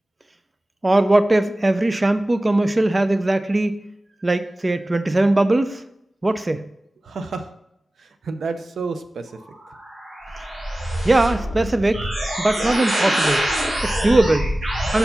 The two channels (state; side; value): normal; both; correlation 0.97